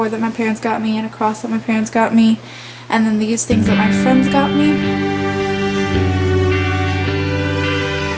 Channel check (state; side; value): identical; both; correlation 1.00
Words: that my parents got me, and a cross that my parents got me, and then these things that my friends got me.